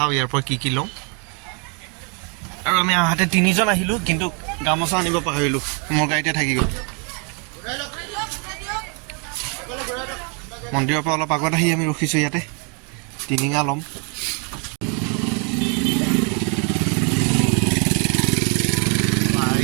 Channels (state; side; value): quieter; left; 36.3 dB